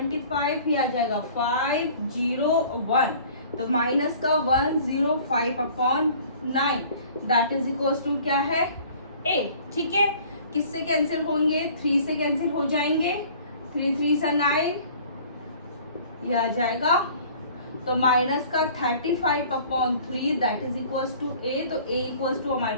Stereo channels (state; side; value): inverted; both; correlation -0.50